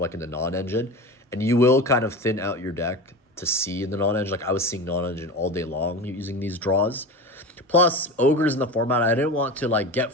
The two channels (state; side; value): normal; both; correlation 0.28